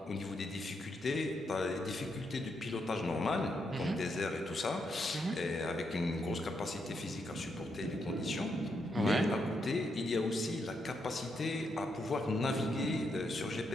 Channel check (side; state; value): both; normal; correlation 0.80